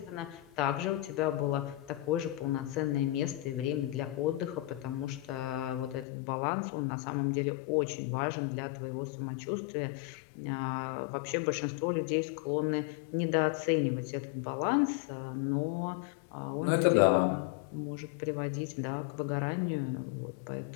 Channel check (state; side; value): drops out; right; at 6.1 s